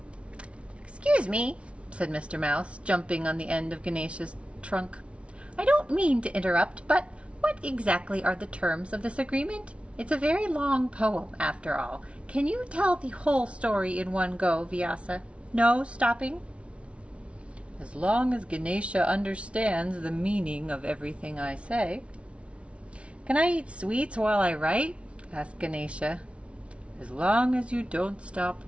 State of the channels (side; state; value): left; late; 0.061 ms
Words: Excuse me, said Mr. Mouse, jumping on the end of Ganesha's trunk. I don't mean to interrupt, but what exactly are the terms of this agreement? It's a very long poem, after all. Can you tell the whole story in one go, Vyasa? No stopping? As long as Ganesha understands the meaning of everything I say. Can I eat sweets while I write? Asked Ganesha. As long as you don't stop